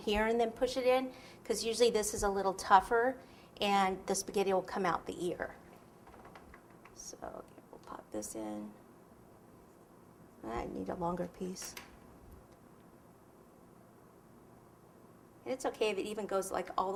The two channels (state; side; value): identical; both; correlation 1.00